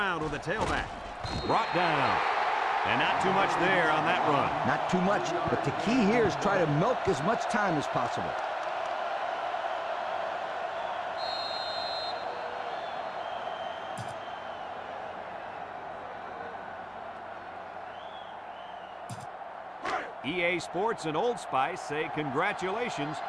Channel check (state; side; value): identical; both; correlation 1.00